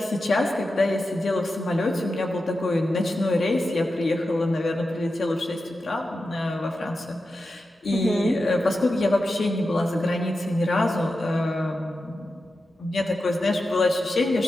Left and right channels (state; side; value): normal; both; correlation 0.91